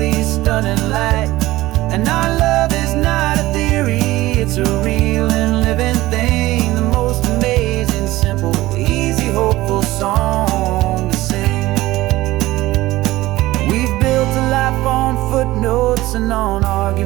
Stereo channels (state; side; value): quieter; left; 17.6 dB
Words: stunning light. And our love is not a theory, it's a real and living thing. The most amazing, simple, easy, hopeful song to sing. We've built a life on footnotes and on